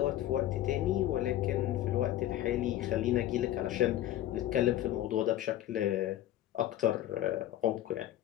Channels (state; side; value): quieter; right; 13.2 dB